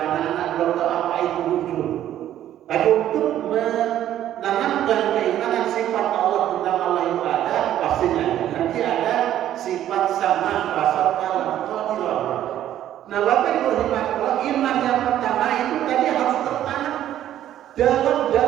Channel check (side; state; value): left; quieter; 11.9 dB